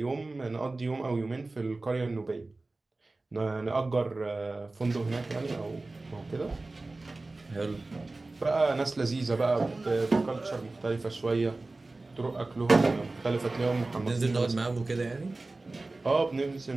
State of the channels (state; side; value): quieter; left; 3.2 dB